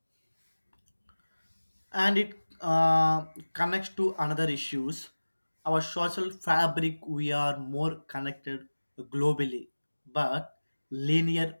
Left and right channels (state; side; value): inverted; both; correlation -1.00